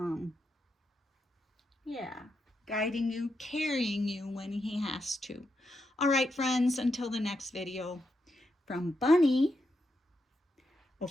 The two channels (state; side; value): normal; both; correlation 0.84